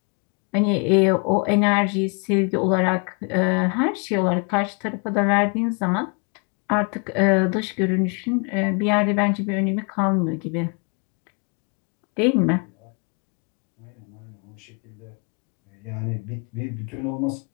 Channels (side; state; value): right; quieter; 35.9 dB